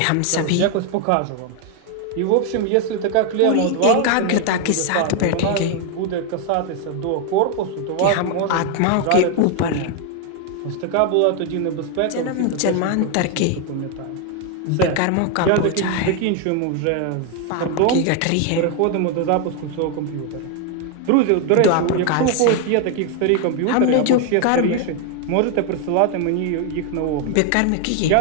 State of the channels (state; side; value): different; both; correlation 0.01